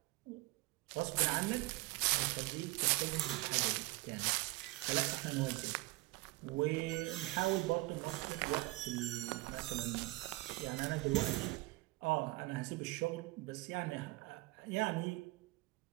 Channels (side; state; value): left; quieter; 21.9 dB